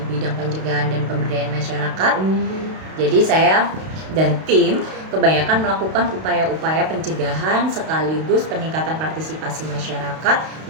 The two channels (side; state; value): left; late; 32 ms